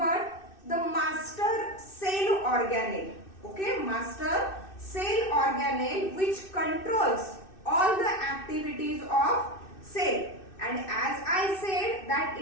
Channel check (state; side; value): late; right; 2.6 ms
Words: the master cell organelle. Okay, master cell organelle which controls all the activities of cell. And as I said that